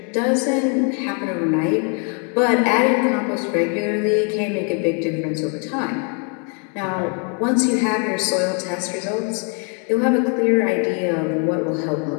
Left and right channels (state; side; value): quieter; right; 38.9 dB